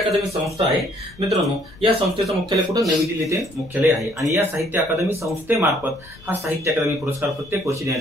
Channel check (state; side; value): noise; left; rumble, 23 dB below the sound